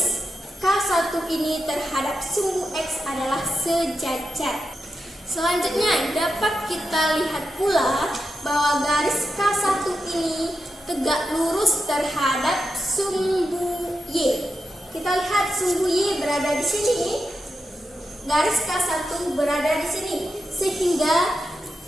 K1 ini terhadap sumbu X adalah sejajar. Selanjutnya dapat kita lihat pula bahwa garis K1 ini tegak lurus terhadap sumbu Y. Kita lihat sumbu Y berada di sini, garis K1 berada di sini, sehingga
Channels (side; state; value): both; normal; correlation 0.87